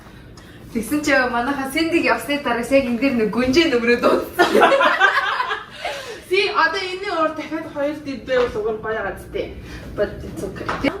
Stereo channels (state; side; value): identical; both; correlation 1.00